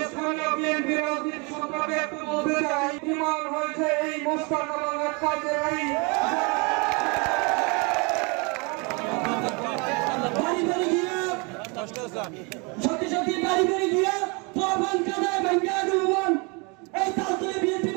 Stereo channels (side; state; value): left; quieter; 30.9 dB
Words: স্থানীয় বিএনপি রাজনীতি সম্পর্কে একটু বলতে চাই। ইমান হয়েছে এই মোস্তাক এবং আক্কাসের এই সত্যি সত্যি বাড়ি বাড়ি গিয়ে প্রমাণ কাদায় ভাঙ্গা রুমন এই তালতলে বিএনপি